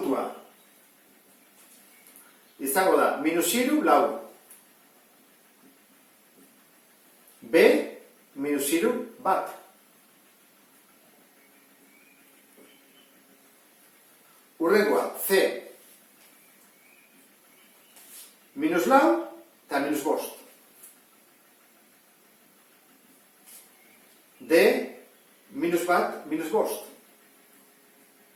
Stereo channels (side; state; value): both; identical; correlation 1.00